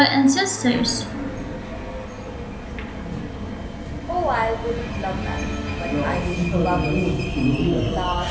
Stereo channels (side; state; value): both; identical; correlation 1.00